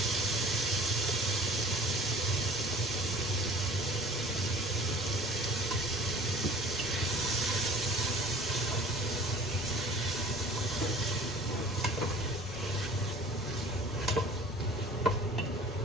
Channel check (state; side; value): normal; both; correlation 0.47